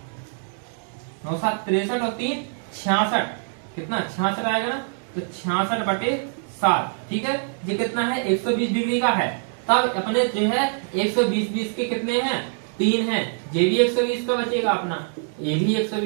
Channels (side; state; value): left; silent; digital silence